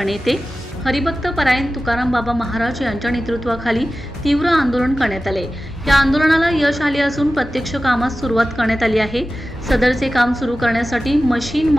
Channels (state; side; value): normal; both; correlation 0.95